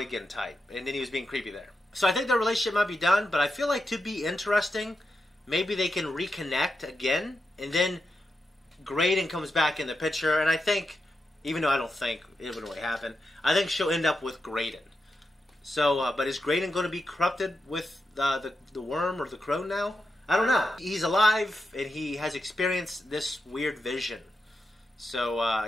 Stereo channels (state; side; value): normal; both; correlation 0.87